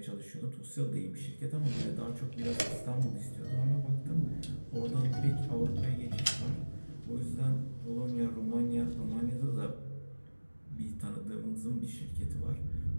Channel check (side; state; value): both; inverted; correlation -1.00